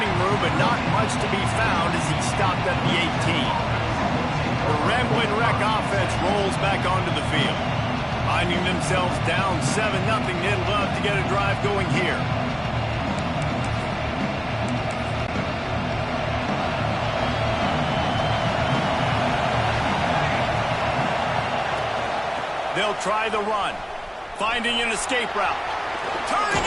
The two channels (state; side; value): identical; both; correlation 1.00